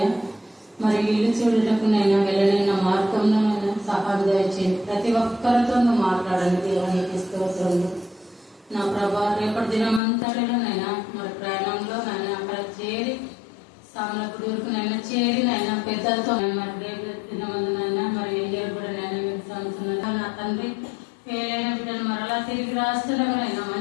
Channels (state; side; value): drops out; right; at 10.0 s